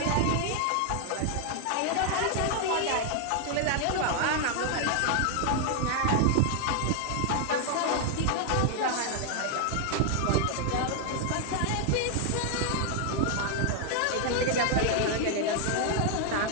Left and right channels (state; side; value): different; both; correlation 0.00